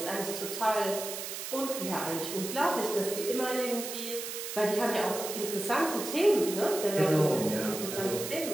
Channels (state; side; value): noise; right; hiss, 6 dB below the sound